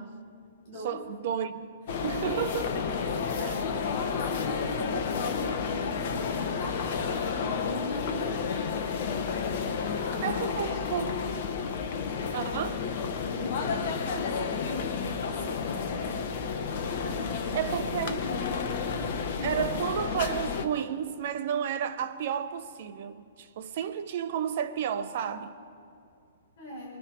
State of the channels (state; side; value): inverted; both; correlation -0.38